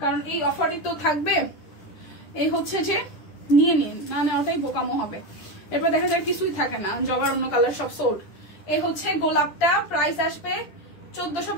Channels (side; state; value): right; late; 10 ms